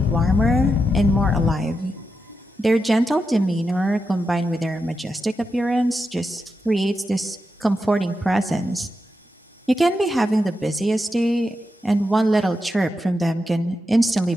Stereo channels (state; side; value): normal; both; correlation 0.87